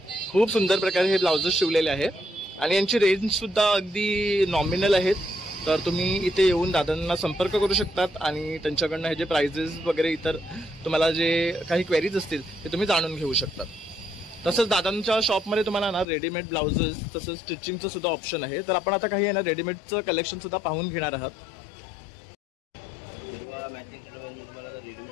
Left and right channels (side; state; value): right; drops out; at 16.1 s